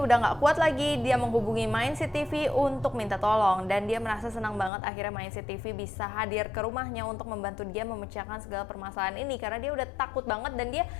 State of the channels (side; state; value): right; drops out; at 4.7 s